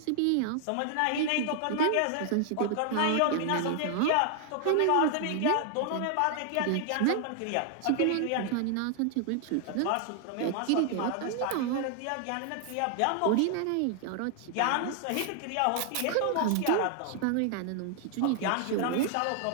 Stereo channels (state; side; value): different; both; correlation 0.00